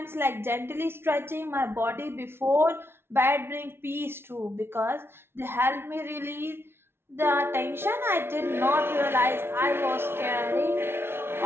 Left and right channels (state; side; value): late; left; 0.12 ms